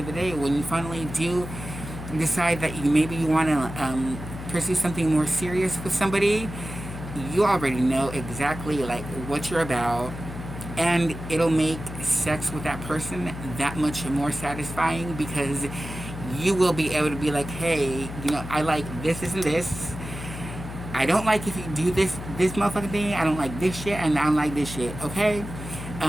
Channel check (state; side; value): noise; left; hum, 10 dB below the sound